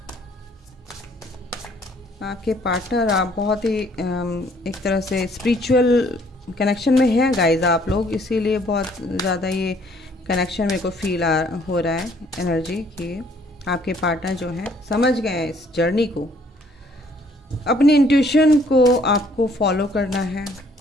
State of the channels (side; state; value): both; normal; correlation 0.62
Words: आपके पार्टनर, आप बहुत ही एक तरह से स्पिरिचुअल कनेक्शन में हैं गाइज आप लोग, इसीलिए बहुत ज़्यादा ये कनेक्शन मेरे को फील हो रहा है एनर्जी कि आपके पार्टनर जो हैं समझ गए हैं इस जर्नी को। अपनी इंट्यूशन को आपको फॉलो करना है,